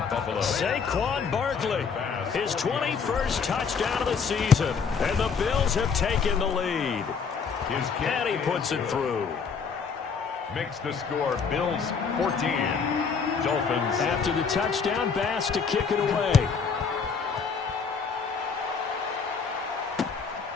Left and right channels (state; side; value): quieter; right; 5.7 dB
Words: Buffalo. Saquon Barkley, his 21st touchdown of the season, and the Bills have taken the lead. And he puts it through. Makes the score Bills 14, Dolphins. After the touchdown, Bass to kick it away.